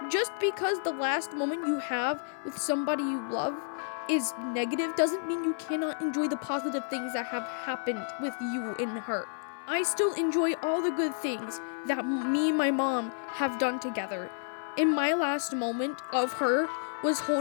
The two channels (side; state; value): right; silent; 57 dB below the other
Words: Just because the last moment you have with somebody you love is negative doesn't mean you cannot enjoy the positive things that have happened with you and her. I still enjoy all the good things that me and my mom have done together. And my last moment of her was